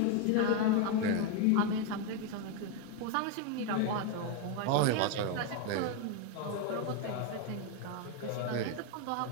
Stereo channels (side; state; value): both; different; correlation 0.02